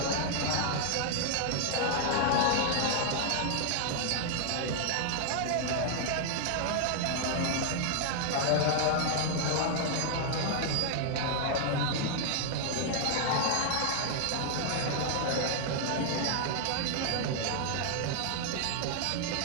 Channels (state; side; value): different; both; correlation 0.00